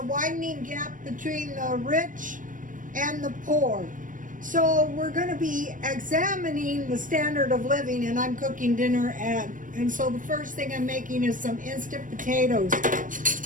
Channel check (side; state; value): left; late; 0.38 ms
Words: widening gap between the rich and the poor. So we're going to be examining the standard of living, and I'm cooking dinner and so the first thing I'm making is some instant potatoes.